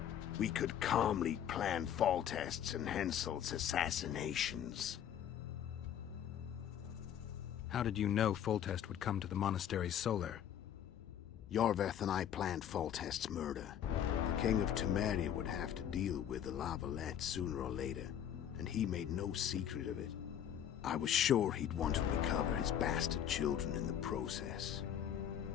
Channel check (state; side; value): quieter; right; 9.8 dB